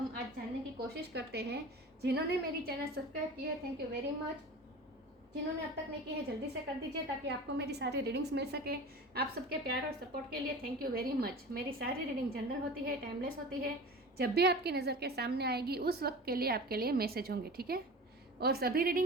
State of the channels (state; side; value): normal; both; correlation 0.35